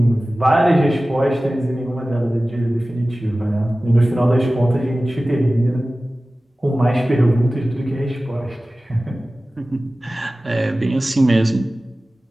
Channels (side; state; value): both; normal; correlation 0.97